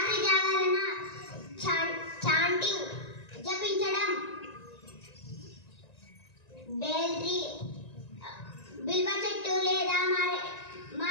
జాగరణ, chanting, జపించడం, bale tree, బిల్వ చెట్టు లేదా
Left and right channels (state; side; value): late; right; 1.9 ms